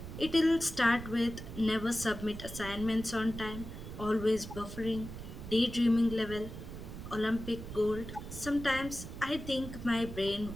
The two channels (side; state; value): right; noise; rumble, 10 dB below the sound